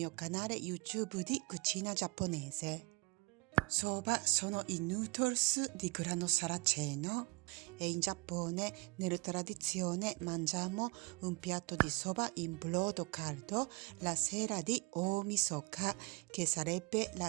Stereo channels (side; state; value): left; quieter; 27.8 dB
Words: canale YouTube di cucina giapponese. Soba sono i noodles di grano saraceno e in Giappone nella tradizione mangiamo un piatto di soba in brodo caldo la sera di Omisoka, che sarebbe